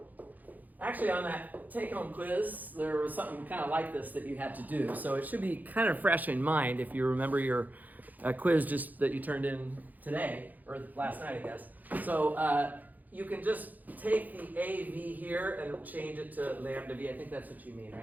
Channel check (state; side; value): late; left; 0.082 ms